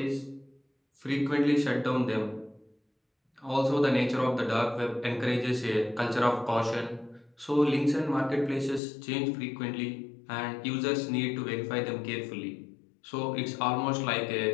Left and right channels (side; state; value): right; drops out; at 8.8 s